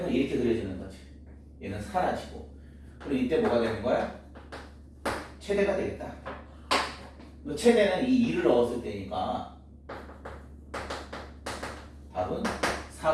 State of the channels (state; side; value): identical; both; correlation 1.00